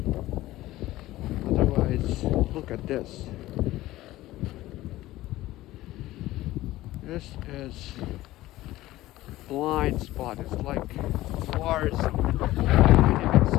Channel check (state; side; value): quieter; right; 16.5 dB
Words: Otherwise, look at this. This is blind spot. It's like forest. You can